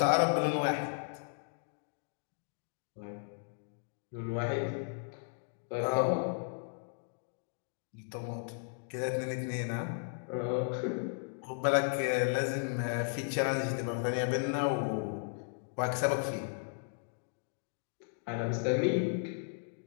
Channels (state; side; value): silent; right; digital silence